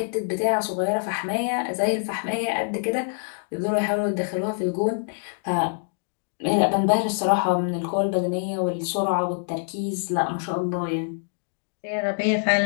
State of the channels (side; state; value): right; silent; digital silence